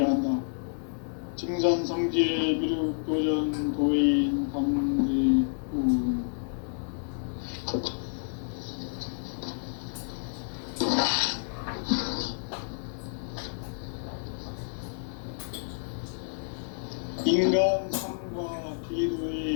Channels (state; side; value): silent; right; 58 dB below the other